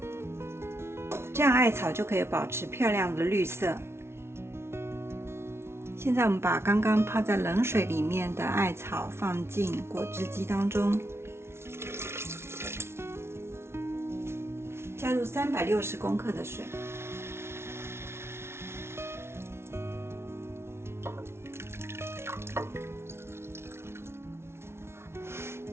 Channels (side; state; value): left; late; 0.12 ms